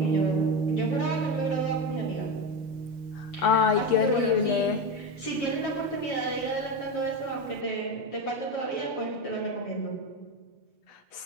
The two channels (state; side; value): late; right; 6.6 ms